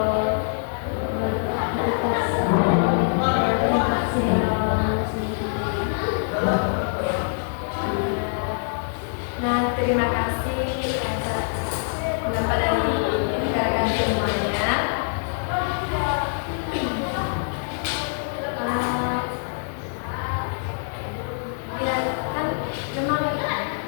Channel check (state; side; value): silent; right; digital silence